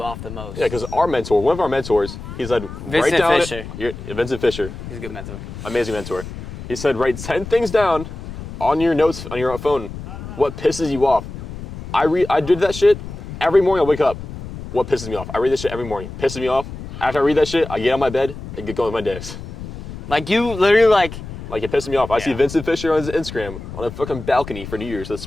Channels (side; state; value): left; noise; rumble, 11 dB below the sound